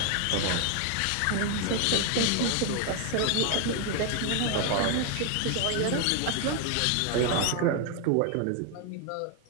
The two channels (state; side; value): different; both; correlation 0.01